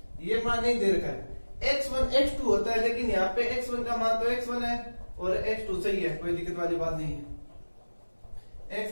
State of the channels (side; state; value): both; inverted; correlation -1.00